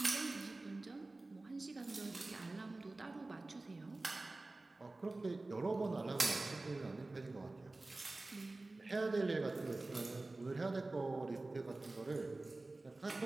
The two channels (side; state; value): left; quieter; 3.1 dB